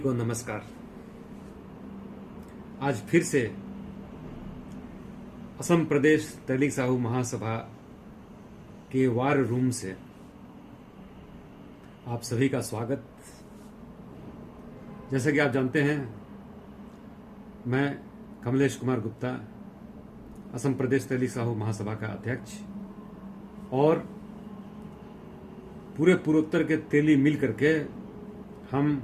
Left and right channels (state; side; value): identical; both; correlation 1.00